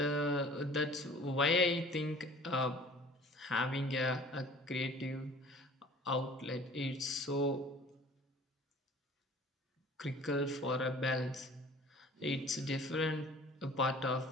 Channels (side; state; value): both; normal; correlation 0.48